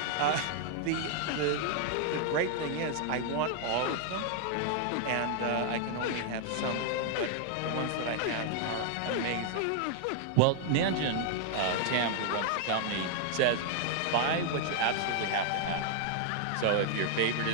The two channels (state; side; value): different; both; correlation 0.00